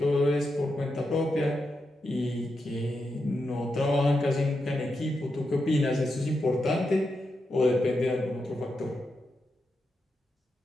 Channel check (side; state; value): both; normal; correlation 0.86